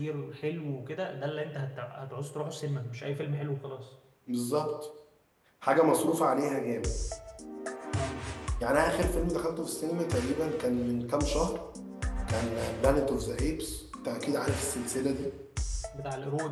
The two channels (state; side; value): identical; both; correlation 1.00